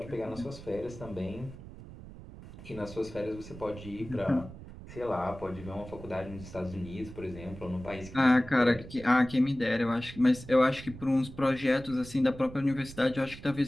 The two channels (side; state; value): right; noise; rumble, 15 dB below the sound